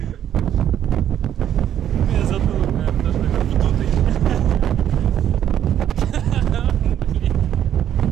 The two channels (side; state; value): left; quieter; 10.3 dB